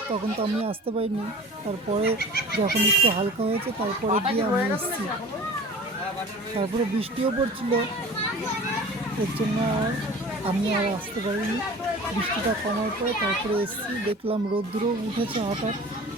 তখন তো আমি আসতে পারিনি। তারপরে যখন একটু হালকা হয়েছে তারপরে গিয়ে আমি এসেছি। তারপরে বৃষ্টিও পড়ছিল, এর জন্য আমি আর আসতে পারিনি। বৃষ্টিটা কমার পরে তারপরে এসেছি, দেখলাম রোদ্দুরও উঠেছে হঠাৎ।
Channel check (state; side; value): normal; both; correlation 0.41